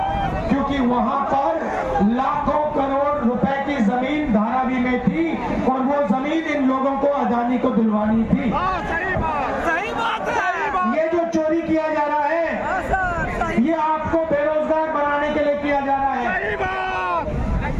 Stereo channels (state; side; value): identical; both; correlation 1.00